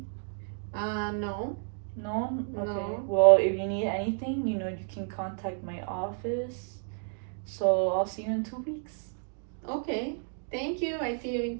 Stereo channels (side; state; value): left; silent; 57 dB below the other